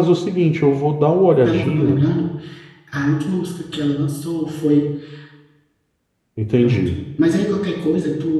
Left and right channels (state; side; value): identical; both; correlation 1.00